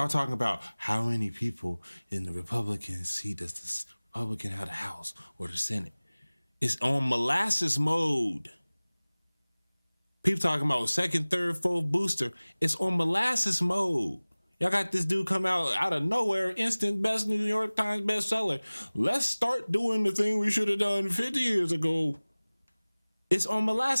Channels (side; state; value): both; inverted; correlation -1.00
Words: talking about how many people in the Republican seat does this Republican have the House or the Senate. It's on molasses mode. People talking about second, third, fourth booster. It's on molasses mode. Y'all got this dude come out of nowhere, instant best New York Times bestseller. Let's start doing the thing we should have done 50 years ago. It's on